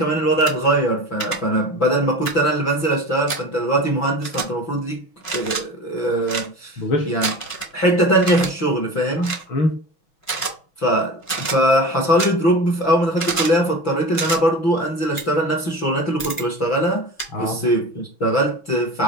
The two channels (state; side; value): late; right; 6.1 ms